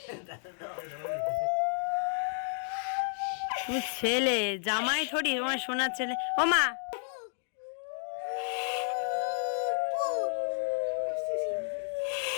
তুমি ছেলে, জামাই থরি তোমার সোনার ছেলে। ও মা,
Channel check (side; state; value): right; silent; digital silence